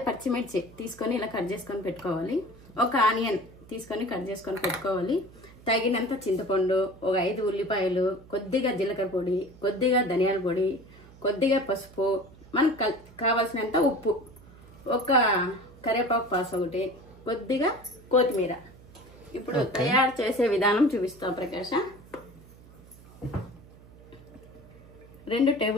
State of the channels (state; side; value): noise; right; hum, 22 dB below the sound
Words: పచ్చిమిర్చి తీసుకొని ఇలా కట్ చేసుకొని పెట్టుకోవాలి. ఒక ఆనియన్ తీసుకొని కట్ చేసుకొని పెట్టుకోవాలి. తగినంత చింతపండు, ఒక 5 ఉల్లిపాయలు, కొద్దిగా జీలకర్ర పొడి, కొద్దిగా ధనియాల పొడి, కొద్దిగా పసుపు, మనకు కావాల్సినంత ఉప్పు, ఒక కరివేపాకు పాస్ ఒకటి, కొద్దిగా కొత్తిమీర. ఇప్పుడు తయారు చేసే విధానం చూపిస్తాం ప్రకాష్. 2